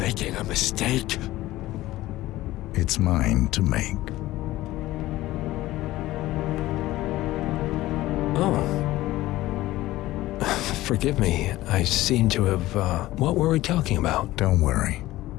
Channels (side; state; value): right; quieter; 16.7 dB